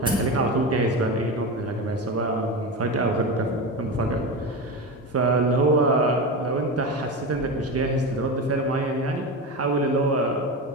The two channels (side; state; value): both; normal; correlation 0.21